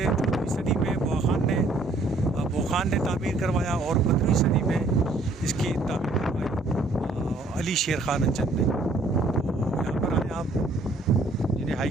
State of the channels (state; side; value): quieter; left; 3.0 dB